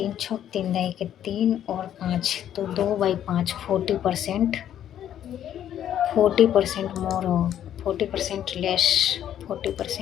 छः 3 दही के 3 और 5, तो 2/5 40%। 40% मोर हो, 40% less,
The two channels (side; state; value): right; quieter; 10.6 dB